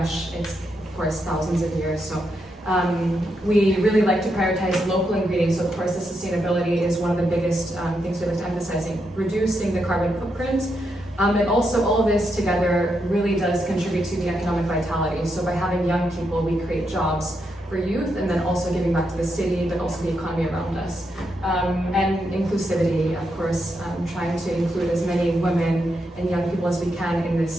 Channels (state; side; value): normal; both; correlation 0.82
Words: It's, of course, thousands of years. So we really like to prioritize local ingredients. So, of course, the sustainability is one of the biggest things we like to emphasize, reducing the carbon footprint. And also all of this together really does contribute to the economic vitality. So by having young people, we create jobs for youth, and then also giving back to the city, but also the economy around us. And inclusivity, of course, trying to include as many women and young people as we can in